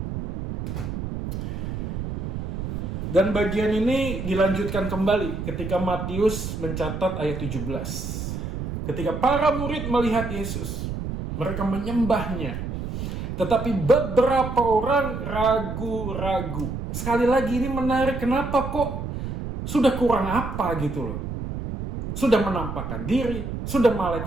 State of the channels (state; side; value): noise; right; rumble, 5 dB below the sound